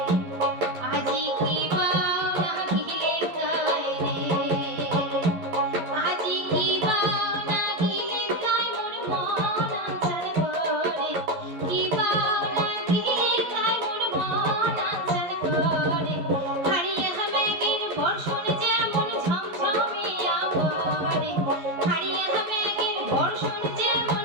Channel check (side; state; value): left; late; 11 ms